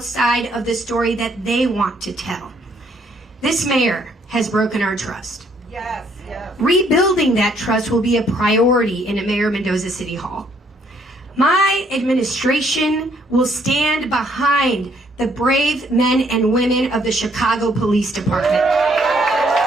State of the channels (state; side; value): normal; both; correlation 0.67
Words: of the story that they want to tell. This mayor has broken our trust. Yes. Rebuilding that trust will be a priority in a Mayor Mendoza City Hall. My administration will stand behind the brave men and women of the Chicago Police Department.